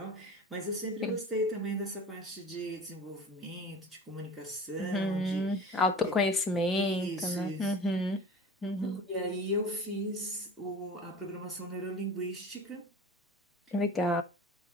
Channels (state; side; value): normal; both; correlation 0.37